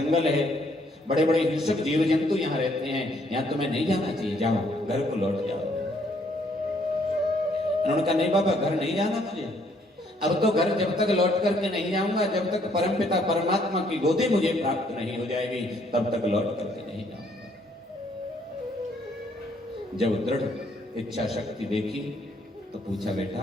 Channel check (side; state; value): both; normal; correlation 0.67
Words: है, बड़े बड़े हिंसक जीव जंतु यहाँ रहते हैं, यहाँ तुम्हें नहीं जाना चाहिए, जाओ घर को लौट जाओ। इन्होंने कहा नहीं बाबा घर नहीं जाना मुझे, अब तो घर जब तक लौट करके नहीं जाऊंगा, जब तक परमपिता परमात्मा की गोदी मुझे प्राप्त नहीं हो जाएगी तब तक लौट करके नहीं जाऊंगा। जब दृढ़ इच्छा शक्ति देखी तो पूछा